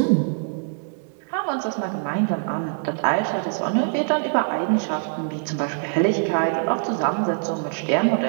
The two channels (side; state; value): left; silent; digital silence